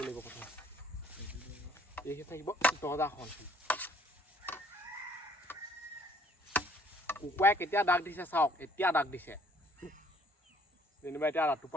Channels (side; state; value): both; normal; correlation 0.60